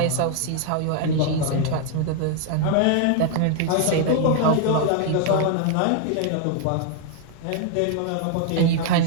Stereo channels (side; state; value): both; different; correlation 0.00